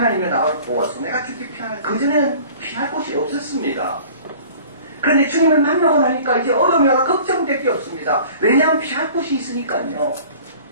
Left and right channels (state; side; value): inverted; both; correlation -0.46